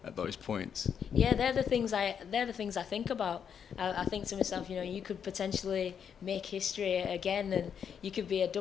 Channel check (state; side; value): quieter; right; 7.7 dB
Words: those points? Yeah, they're the things I think about. I think to myself, you could potentially make history again, and you could be a